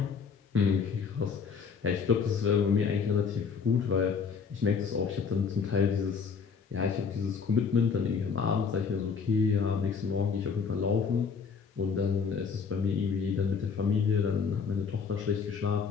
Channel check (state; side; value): quieter; right; 5.9 dB